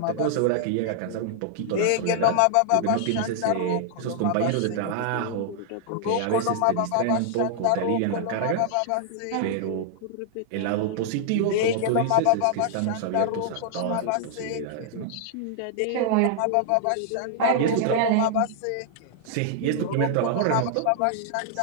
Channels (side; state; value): both; different; correlation -0.01